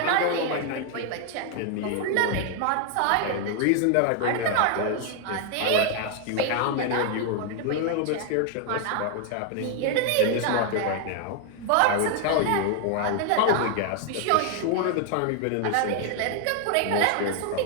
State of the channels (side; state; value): both; different; correlation 0.00